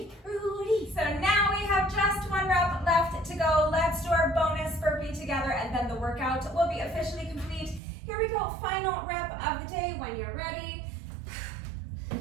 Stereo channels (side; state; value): left; drops out; at 7.8 s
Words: Rudy. So now we have just one rep left to go. Let's do our bonus burpee together, and then the workout will be officially complete. Here we go, final rep of the day when you're ready.